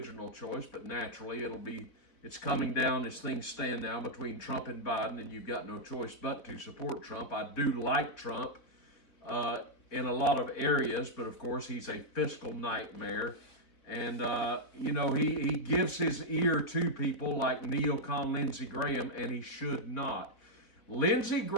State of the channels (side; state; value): right; late; 4.0 ms